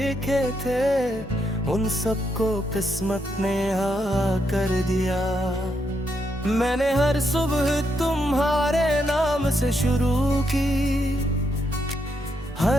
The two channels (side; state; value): both; normal; correlation 0.79